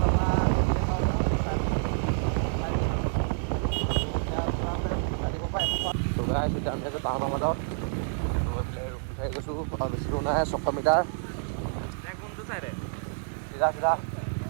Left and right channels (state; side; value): silent; left; digital silence